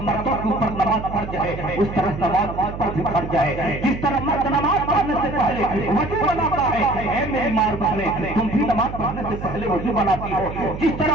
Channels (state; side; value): noise; right; hum, 9 dB below the sound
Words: मर्दों के ऊपर नमाज फर्ज है उस तरह नमाज पर भी फर्ज है। जिस तरह मर्द नमाज पढ़ने से पहले वजू बनाता है, ऐ मेरी मार बहने, तुम भी नमाज पढ़ने से पहले वजू बनाती हो। जिस तरह